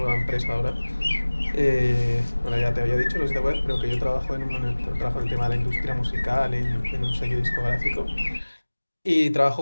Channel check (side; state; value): both; inverted; correlation -1.00